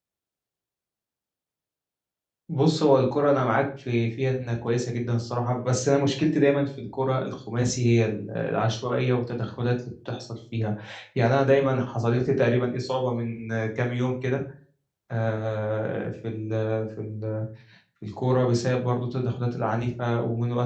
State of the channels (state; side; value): identical; both; correlation 1.00